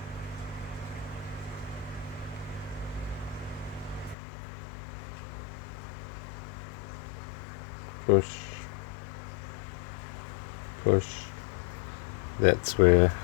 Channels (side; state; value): right; drops out; at 4.2 s